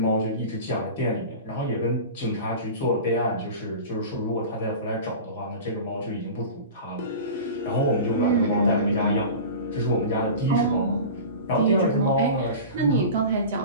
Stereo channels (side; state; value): both; inverted; correlation -0.33